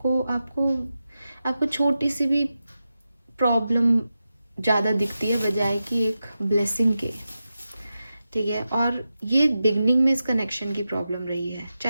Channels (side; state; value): both; inverted; correlation -0.91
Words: आपको छोटी सी भी प्रॉब्लम ज़्यादा दिखती है बजाय कि एक ब्लेसिंग के, ठीक है। और ये बिगनिंग में इस कनेक्शन की प्रॉब्लम रही है,